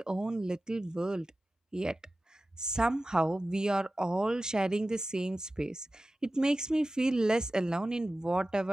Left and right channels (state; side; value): normal; both; correlation 0.95